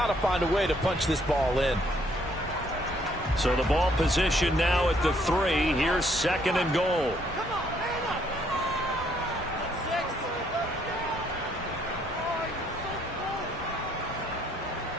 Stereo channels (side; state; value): both; normal; correlation 0.68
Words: to find a way to punch this ball in. So the ball position now at the 3. Here's 2nd and goal.